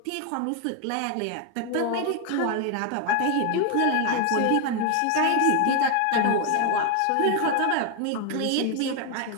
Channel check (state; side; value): different; both; correlation 0.01